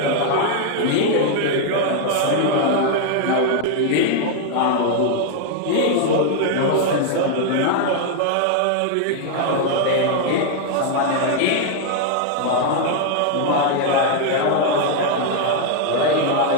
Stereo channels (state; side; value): different; both; correlation 0.00